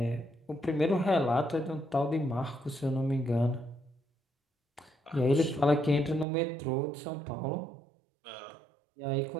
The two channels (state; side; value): drops out; left; at 6.2 s